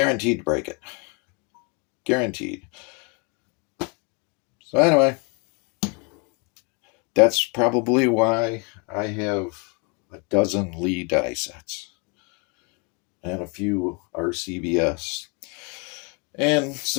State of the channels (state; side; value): quieter; right; 33.0 dB